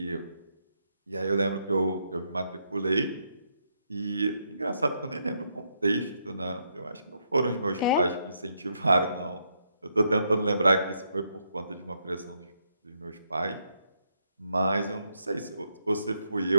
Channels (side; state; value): both; inverted; correlation -0.77